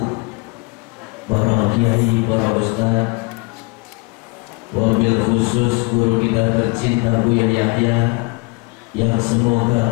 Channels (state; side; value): quieter; right; 27.2 dB